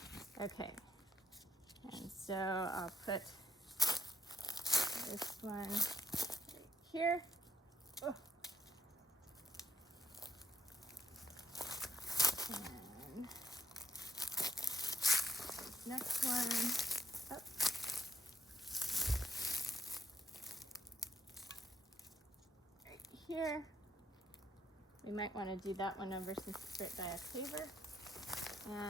Okay. And so I'll put this one right here. Oh. And next one up. Right here. We might want to do that one over since it's right by a paver.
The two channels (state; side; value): normal; both; correlation 0.74